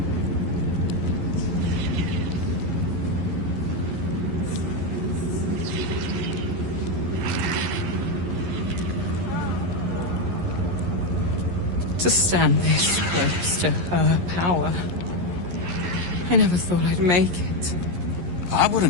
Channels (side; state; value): left; late; 11 ms